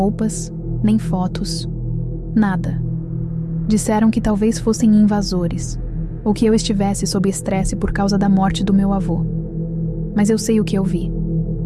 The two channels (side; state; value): both; identical; correlation 1.00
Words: nem fotos, nada. Disseram que talvez fossem invasores, ou que eu estivesse sob estresse por causa da morte do meu avô. Mas eu sei o que eu vi.